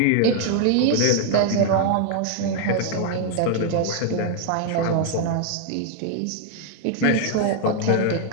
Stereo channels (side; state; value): both; different; correlation 0.00